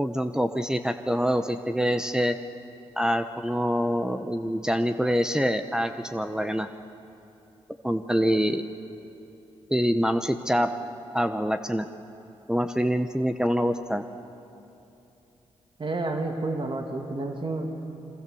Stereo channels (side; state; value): both; normal; correlation 0.93